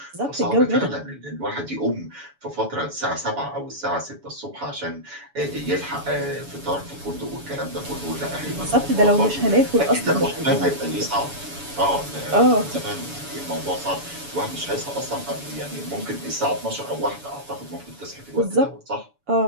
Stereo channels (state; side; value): late; left; 7.0 ms